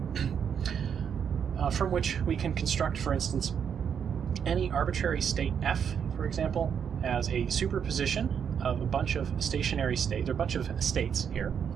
from which we can construct, for instance, any arbitrary state f, for example, as a superposition of a bunch of stationary states, or a bunch of states here,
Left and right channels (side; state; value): left; quieter; 7.6 dB